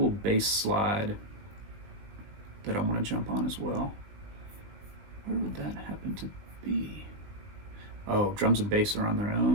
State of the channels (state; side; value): late; left; 19 ms